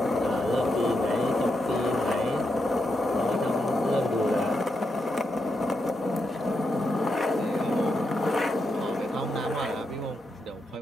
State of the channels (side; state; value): both; normal; correlation 0.84